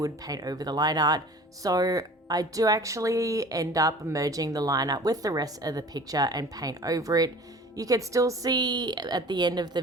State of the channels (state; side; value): normal; both; correlation 0.44